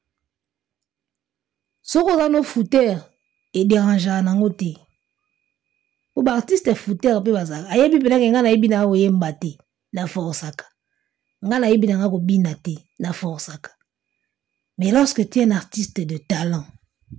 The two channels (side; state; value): left; quieter; 11.9 dB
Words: Soko zano fouteur et dérangeant nango te. ba artiste fouteur pe bazaka ayebi pena ke nga na yebi na oyemba te na forsaka nga na yebi na nga ko bina te na forsaka. Mais lorsque tu es un artiste de talent